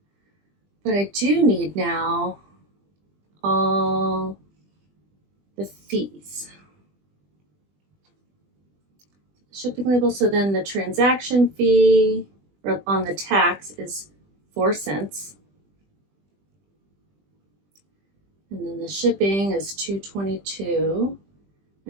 But I do need now all the fees. Shipping label, so then the transaction fee on the tax is 4 cents. And then the shipping is $2.22.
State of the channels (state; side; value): late; left; 20 ms